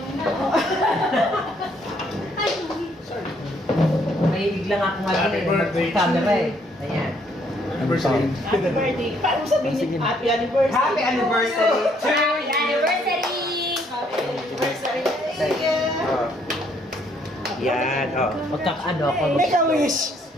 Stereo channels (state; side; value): normal; both; correlation 0.68